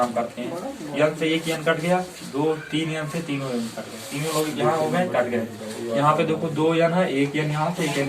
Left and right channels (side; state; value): both; identical; correlation 1.00